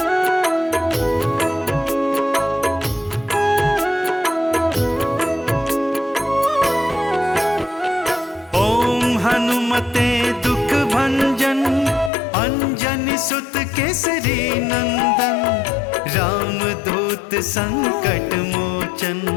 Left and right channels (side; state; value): right; drops out; at 12.1 s